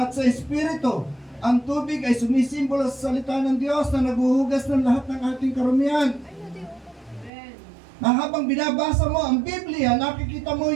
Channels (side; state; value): left; drops out; at 7.3 s